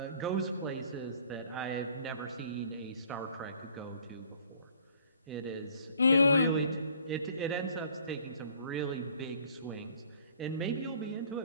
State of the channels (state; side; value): inverted; both; correlation -0.55